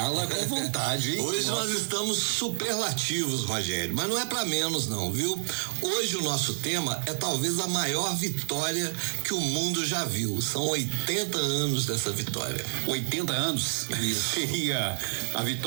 com vontade, hein? Hoje nós estamos superlativos, Rogério, mas não é pra menos não, viu? Hoje o nosso tema é talvez a maior vitória que o mundo já viu. São 80 anos dessa vitória. 80 anos? Isso. Seria a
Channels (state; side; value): silent; left; digital silence